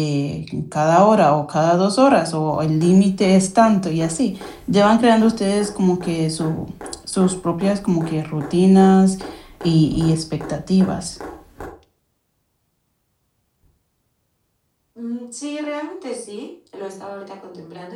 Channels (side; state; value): both; identical; correlation 1.00